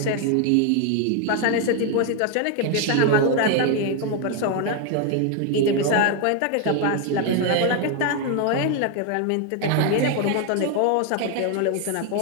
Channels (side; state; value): both; different; correlation 0.01